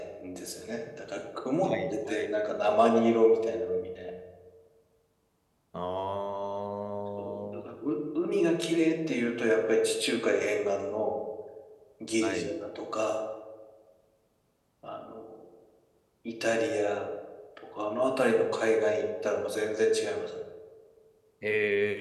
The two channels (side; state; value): both; identical; correlation 1.00